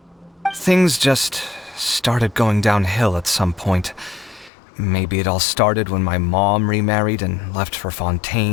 Things just started going downhill at some point. Maybe it all started when my mom remarried and left for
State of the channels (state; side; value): drops out; right; at 4.5 s